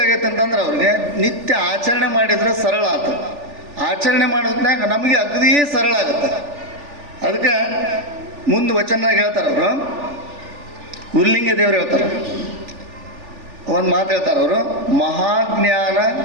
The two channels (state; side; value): late; left; 3.4 ms